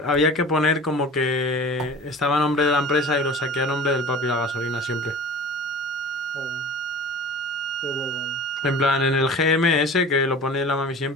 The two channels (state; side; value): normal; both; correlation 0.40